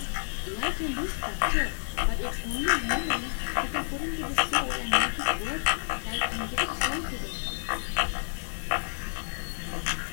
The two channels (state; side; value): silent; right; digital silence